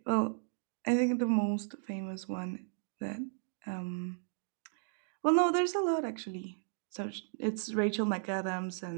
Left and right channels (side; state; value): left; silent; digital silence